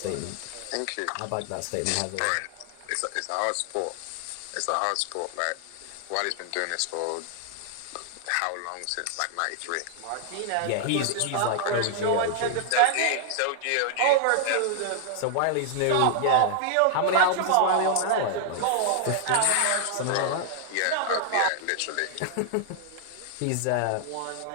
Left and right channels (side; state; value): both; different; correlation 0.00